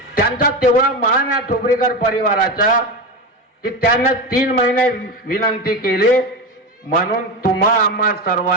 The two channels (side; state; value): both; normal; correlation 0.19